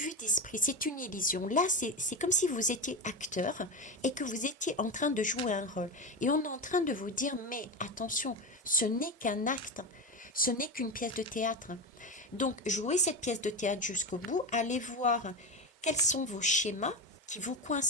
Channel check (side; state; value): both; normal; correlation 0.19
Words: d'esprit, c'est une illusion. Là, c'est comme si vous étiez acteur et que vous étiez en train de jouer un rôle. Et on est en train de vous dire, mais attention, ce n'est qu'un acte, ce n'est qu'une pièce de théâtre. Donc, jouez cette pièce de théâtre jusqu'au bout, allez voir quels sont vos schémas qui vous